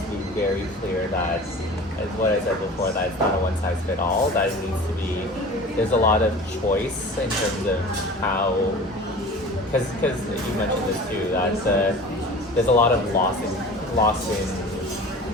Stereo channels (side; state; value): both; normal; correlation 0.39